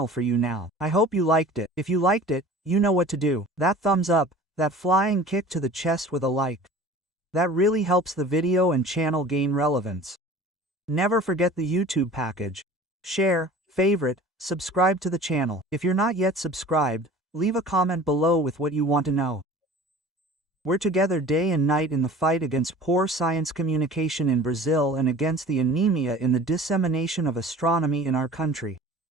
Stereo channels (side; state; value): both; normal; correlation 0.43